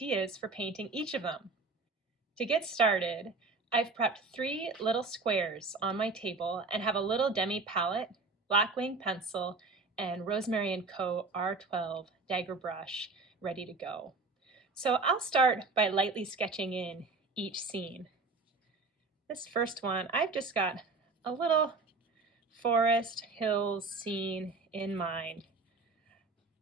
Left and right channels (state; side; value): quieter; left; 3.8 dB